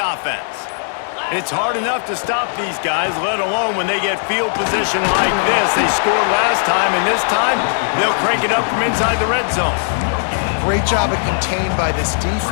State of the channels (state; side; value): silent; right; digital silence